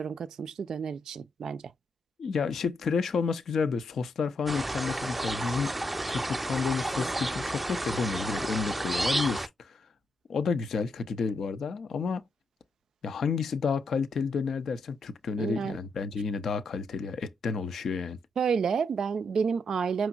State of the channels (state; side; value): normal; both; correlation 0.80